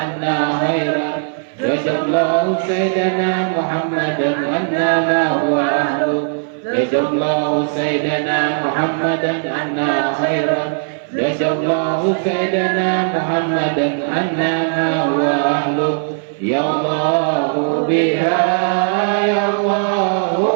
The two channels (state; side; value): silent; left; 60 dB below the other